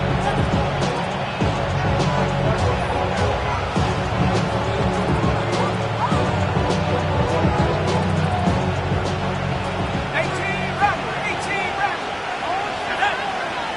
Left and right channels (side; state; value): both; identical; correlation 1.00